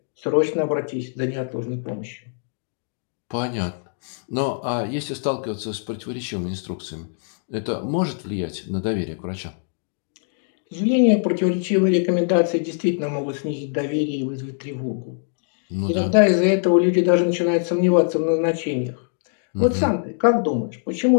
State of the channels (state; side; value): silent; right; 63 dB below the other